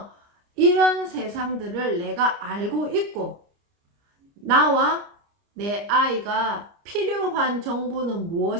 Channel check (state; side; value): late; left; 29 ms